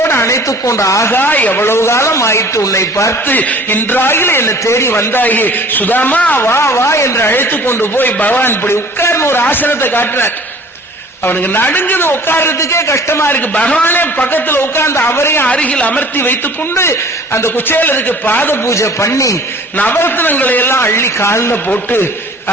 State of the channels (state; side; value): normal; both; correlation 0.48